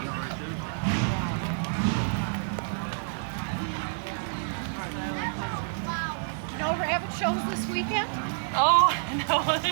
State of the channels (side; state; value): left; silent; digital silence